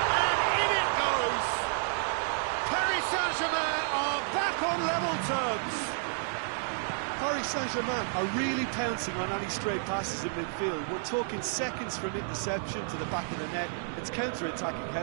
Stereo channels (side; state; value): left; silent; digital silence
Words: And in it goes. Paris Saint-Germain are back on level terms. Paris Saint-Germain are really pouncing on any stray passes in midfield. We're talking seconds from interception to the back of the net. It's counter-attacking